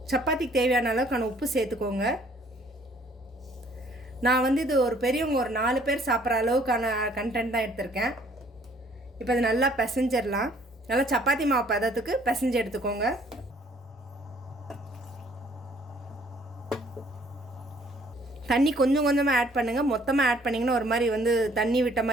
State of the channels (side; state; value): both; normal; correlation 0.60